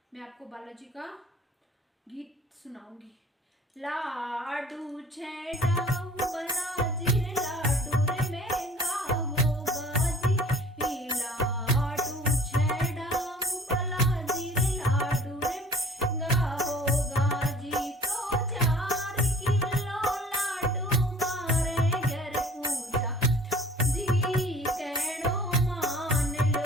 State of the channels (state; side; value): normal; both; correlation 0.48